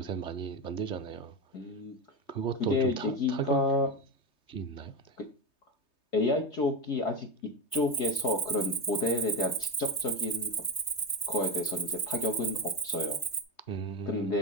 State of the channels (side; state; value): right; late; 3.2 ms